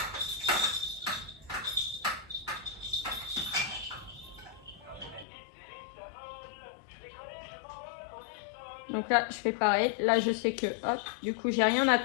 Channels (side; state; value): right; drops out; at 5.2 s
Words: Donc là, je fais pareil. Là, je sais que, hop, du coup, j'ai rien à